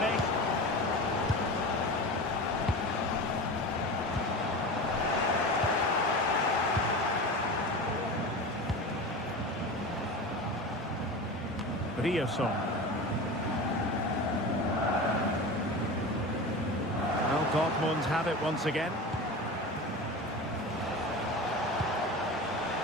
Rierson. Well, Dortmund have it once again.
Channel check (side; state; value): both; normal; correlation 0.29